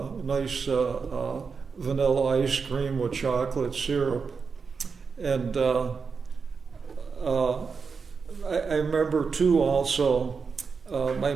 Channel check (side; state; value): left; quieter; 5.3 dB